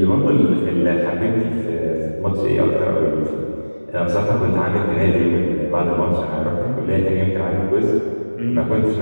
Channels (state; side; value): inverted; both; correlation -1.00